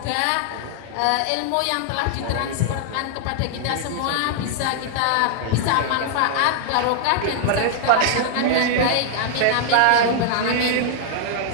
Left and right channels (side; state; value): both; different; correlation -0.01